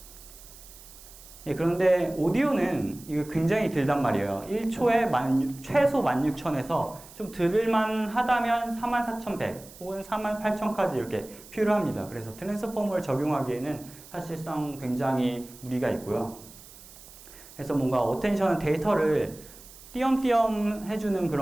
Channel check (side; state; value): right; noise; hiss, 19 dB below the sound